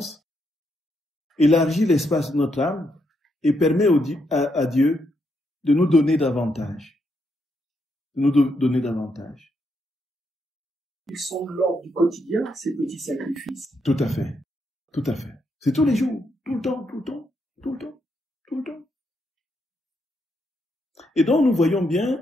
élargit l'espace de notre âme et permet à Dieu de nous donner davantage. De nous donner davantage. Ils sont de l'ordre du quotidien, ces petits sacrifices. Tout à fait. Tout à fait. C'est tous les jours, tout le temps, tout le temps, tout le temps, tout le temps. Et donc, nous voyons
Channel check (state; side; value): normal; both; correlation 0.79